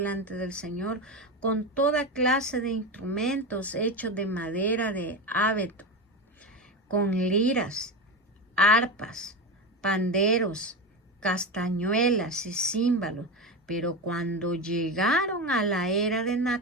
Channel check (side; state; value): both; normal; correlation 0.20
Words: del Señor con toda clase de instrumentos hechos de madera de abeto, con liras, arpas, panderos, castañuelas y címbalos. Pero cuando llegaron a la era de